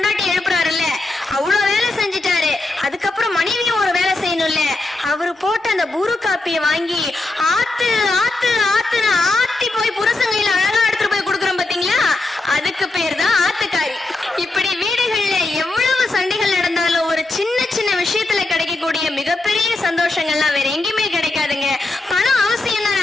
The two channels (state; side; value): quieter; right; 3.0 dB